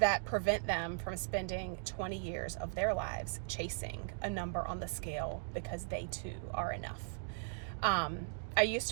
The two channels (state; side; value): silent; left; digital silence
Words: prevent them from spending 20 years of their lives chasing a number on the scale because they too are enough. I used